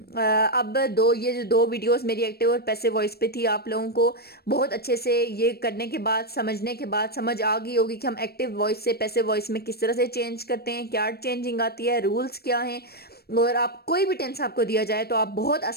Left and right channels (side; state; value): right; late; 0.46 ms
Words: अब ये जो दो वीडियोस मेरी एक्टिव और पैसिव वॉइस पे थी, आप लोगों को बहुत अच्छे से ये करने के बाद, समझने के बाद समझ आ गई होगी कि हम एक्टिव वॉइस से पैसिव वॉइस में किस तरह से चेंज करते हैं, क्या चेंजिंग आती है, रूल्स क्या हैं। और आप कोई भी टेंस आपको दिया जाए तो आप बहुत